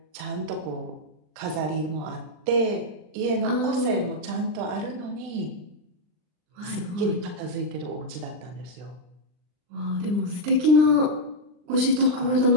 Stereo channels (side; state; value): left; late; 39 ms